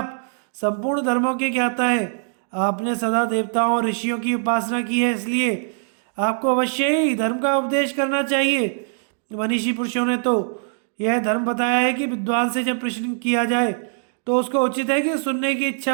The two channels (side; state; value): left; silent; digital silence